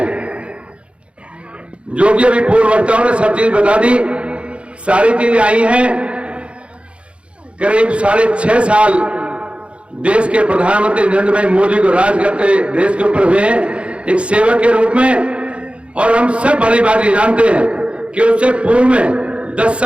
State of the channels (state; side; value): late; left; 0.060 ms